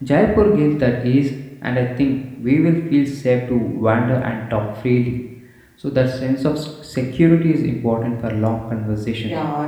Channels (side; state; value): both; identical; correlation 1.00